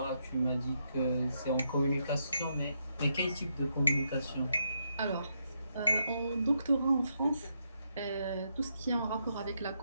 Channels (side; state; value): both; inverted; correlation -0.79